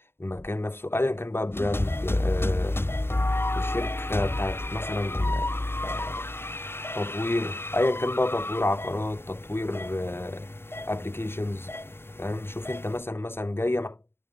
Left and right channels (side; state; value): right; late; 0.11 ms